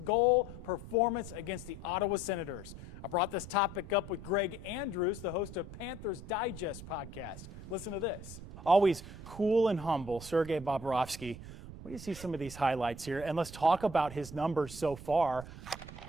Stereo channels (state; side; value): noise; right; rumble, 13 dB below the sound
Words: performance against the Ottawa Senators. I brought this topic up with Greg Andrews, the host of Panthers Digest podcast. Listen to this. Always cool and humble, Sergei Bobrovsky. What do you see some of these highlights here? And let's talk about his numbers so far.